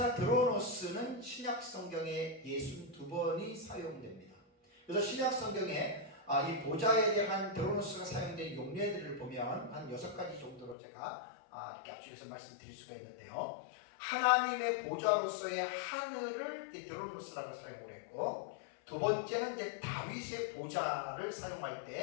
드로노스는 신약 성경에 62번이 사용됩니다. 그래서 신약 성경에 이 보좌에 대한 드로노스가 사용된 용례들을 보면 한 6가지 정도로 제가 이렇게 압축해서 말씀드릴 수가 있는데요. 하나님의 보좌로서의 하늘을 드로노스라고 사용을 했고, 두 번째는 이제 다윗의 보좌를 사용할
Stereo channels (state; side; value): drops out; right; at 10.8 s